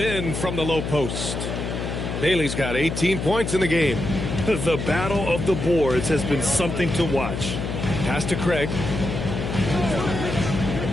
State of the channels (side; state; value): left; noise; hum, 4 dB below the sound